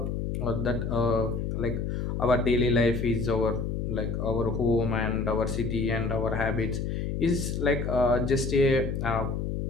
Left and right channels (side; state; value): left; noise; hum, 2 dB below the sound